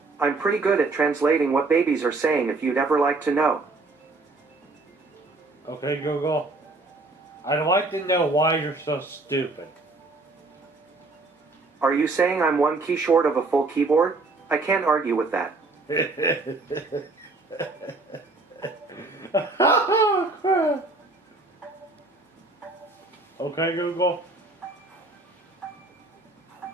I'm pretty good at translating what babies are saying if you'd ever like to know. Okay, Google, I'd like to know why you're so stupid. Are you saying I'm one key short of a full keyboard? I can't argue with that. Oh, crap. Okay, Google.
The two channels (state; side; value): quieter; left; 3.4 dB